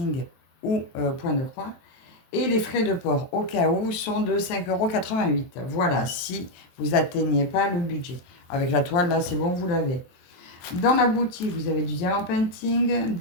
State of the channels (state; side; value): late; right; 23 ms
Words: ou Point de croix. Et les frais de port, au cas où, sont de 5,88 €. Voilà, si vous n'atteignez pas le budget. Avec la toile, là, c'est bon, vous l'avez. Dans la boutique, vous avez du Diamant Painting,